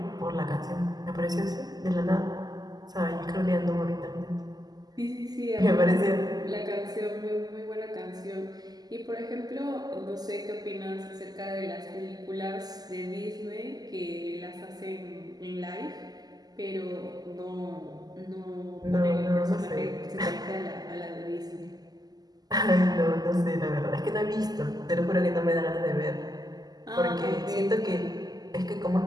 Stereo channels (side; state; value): left; late; 0.19 ms